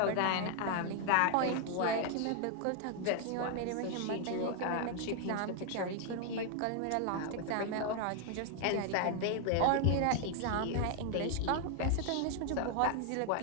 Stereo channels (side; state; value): both; different; correlation 0.00